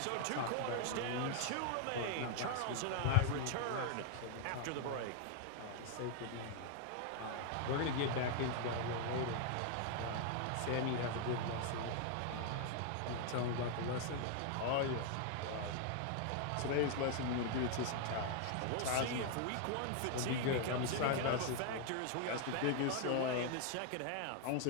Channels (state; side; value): different; both; correlation 0.00